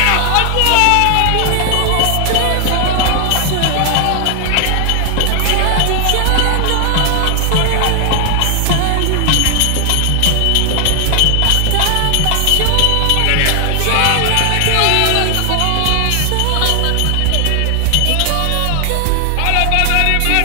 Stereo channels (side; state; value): both; different; correlation 0.00